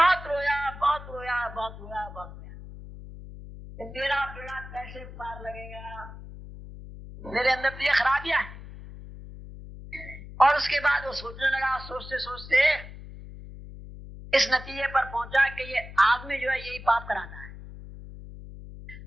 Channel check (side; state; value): left; noise; hum, 14 dB below the sound